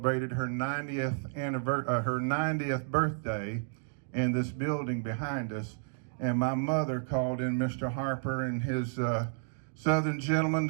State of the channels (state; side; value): silent; left; digital silence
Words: her 90th birthday in this building behind us. And my mother called in Mr. Harper and his Southern gentleman